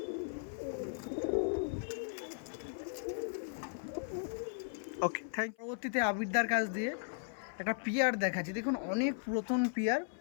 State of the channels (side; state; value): right; silent; 53 dB below the other